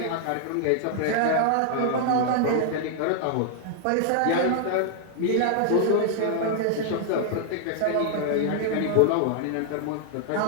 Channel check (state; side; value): different; both; correlation 0.00